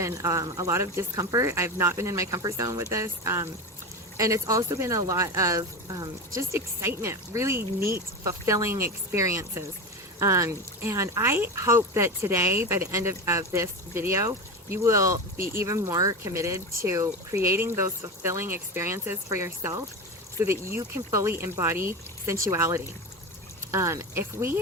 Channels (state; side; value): normal; both; correlation 0.22